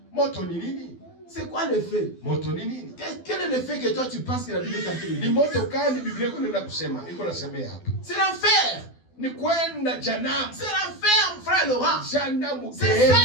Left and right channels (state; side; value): late; right; 12 ms